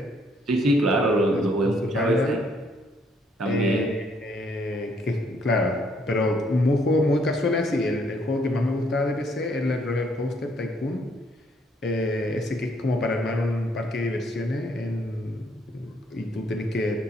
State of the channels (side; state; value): both; normal; correlation 0.68